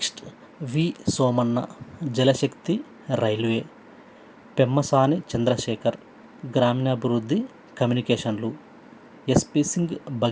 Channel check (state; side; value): identical; both; correlation 1.00